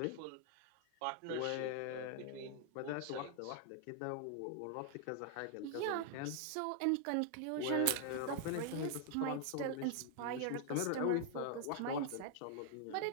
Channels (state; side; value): different; both; correlation 0.00